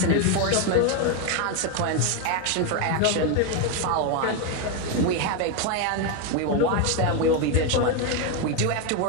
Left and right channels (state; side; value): different; both; correlation 0.03